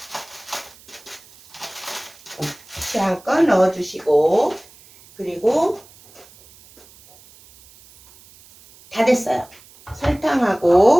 취향껏 넣어주시고, 그리고 다 됐어요.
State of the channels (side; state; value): right; noise; hiss, 25 dB below the sound